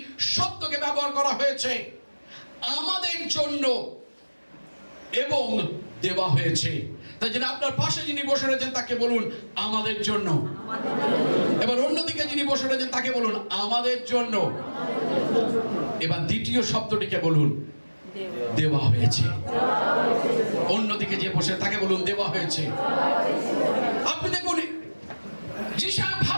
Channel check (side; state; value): both; inverted; correlation -1.00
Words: শব্দকে ব্যবহার করা হয়েছে, আমাদের জন্য এবং দেওয়া হয়েছে। তাই জন্য আপনার পাশে যিনি বসে রয়েছেন তাকে বলুন আমাদের জন্য। এবার অন্যদিকে যিনি বসে রয়েছেন তাকে বলুন আমাদের জন্য। এবার দ্বিতীয় শব্দটিকে বলুন দেওয়া হয়েছে। অন্যদিকে যে বসে তাকে বলুন দেওয়া হয়েছে। আপনি দেখুন যিশু